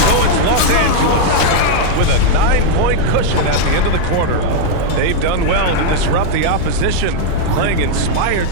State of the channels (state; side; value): different; both; correlation -0.01